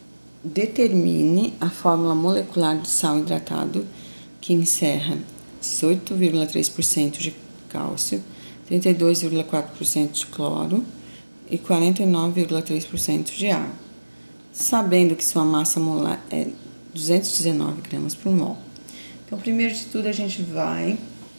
Determine a fórmula molecular do sal hidratado, que encerra 18,3% de cálcio, 32,4% de cloro e 49,3% de água, sabendo que sua massa molar é 219 gramas por mol. Então, primeiro de tudo, a gente vai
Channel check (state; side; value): inverted; both; correlation -1.00